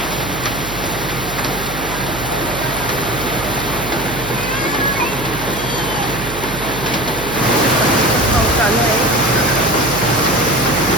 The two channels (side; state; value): right; noise; hum, 11 dB below the sound